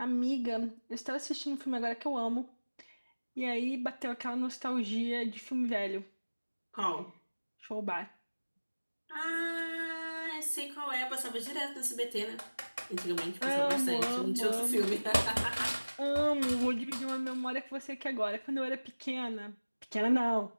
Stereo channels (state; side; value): inverted; both; correlation -1.00